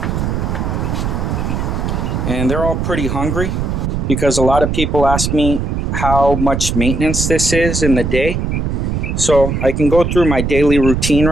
And they're all pretty hungry because a lot of people ask me how much maintenance this is in the day. So I can go through my daily routine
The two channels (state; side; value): noise; right; rumble, 1 dB below the sound